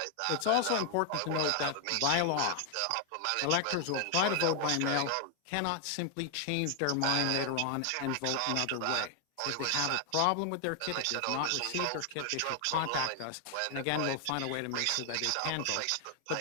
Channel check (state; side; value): different; both; correlation 0.00